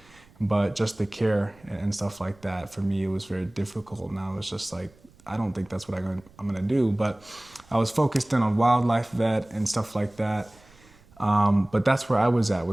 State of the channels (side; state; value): right; noise; rumble, 27 dB below the sound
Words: but just the care and stuff like that. For me, it was very difficult, and I was just like, I don't think that's what I'm gonna do. But I was focused in on wildlife vet and stuff like that. But that's where I was